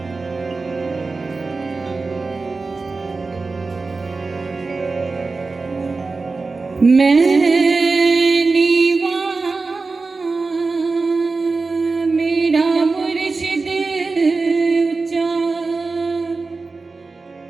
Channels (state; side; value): quieter; left; 3.9 dB